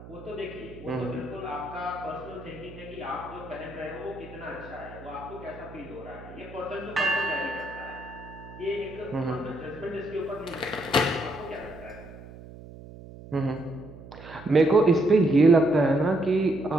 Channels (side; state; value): right; noise; hum, 16 dB below the sound